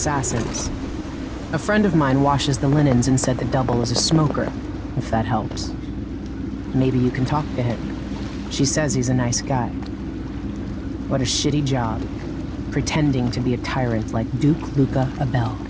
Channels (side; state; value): both; identical; correlation 1.00